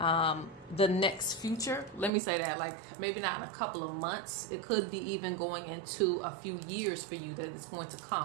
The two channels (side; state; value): left; drops out; at 2.1 s